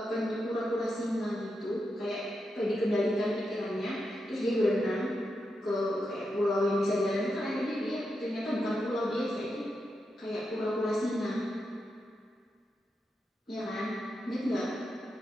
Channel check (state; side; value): normal; both; correlation 0.86